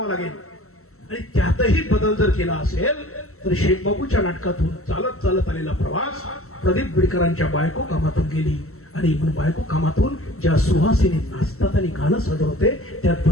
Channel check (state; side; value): late; right; 0.63 ms